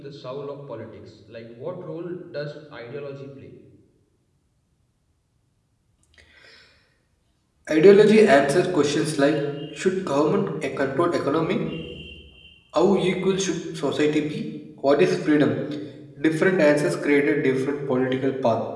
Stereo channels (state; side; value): identical; both; correlation 1.00